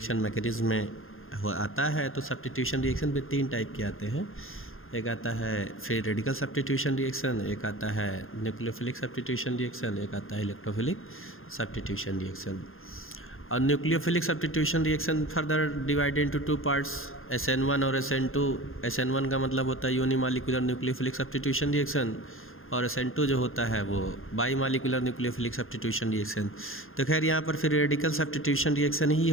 मैकेनिज्म में आता है। तो सब्स्टिट्यूशन रिएक्शन में 3 टाइप के आते हैं। एक आता है फ्री रेडिकल सब्स्टिट्यूशन रिएक्शन, एक आता है न्यूक्लियोफिलिक सब्स्टिट्यूशन रिएक्शन, एक आता है इलेक्ट्रोफिलिक सब्स्टिट्यूशन रिएक्शन। और nucleophilic substitution reaction further divided into 2 parts, SN1 और SN2। SN1 का मतलब होता है यूनिमॉलिक्यूलर न्यूक्लियोफिलिक सब्स्टिट्यूशन रिएक्शन और SN2 जो होता है वो बाईमॉलिक्यूलर न्यूक्लियोफिलिक सब्स्टिट्यूशन रिएक्शन। तो खैर यहाँ पर फ्री रेडिकल सब्स्टिट्यूशन रिएक्शन ही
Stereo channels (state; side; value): late; right; 0.60 ms